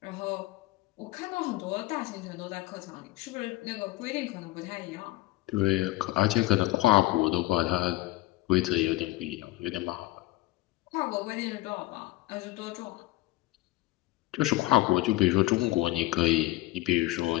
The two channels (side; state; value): right; quieter; 18.0 dB